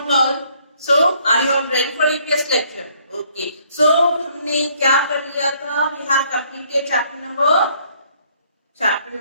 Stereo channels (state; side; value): inverted; both; correlation -0.65